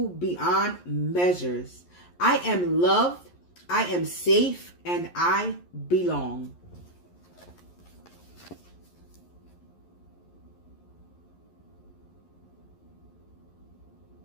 beyond measures. I am loved, I am safe, and I belong.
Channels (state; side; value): late; right; 11 ms